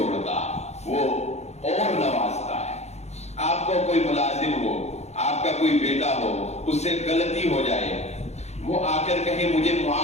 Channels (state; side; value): late; right; 0.32 ms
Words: وہ اور نوازتا ہے. آپ کو کوئی ملازم ہو, آپ کا کوئی بیٹا ہو, اس سے غلطی ہو جائے, وہ آ کر کہے مجھے